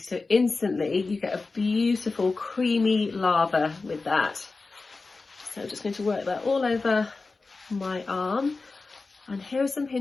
instantly you get a beautiful creamy lather with that. So I'm just going to work that all over my arm. And here are some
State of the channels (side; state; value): right; quieter; 3.8 dB